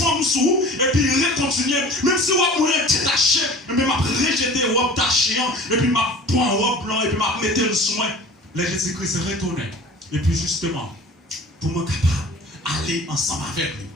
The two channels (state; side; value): normal; both; correlation 0.42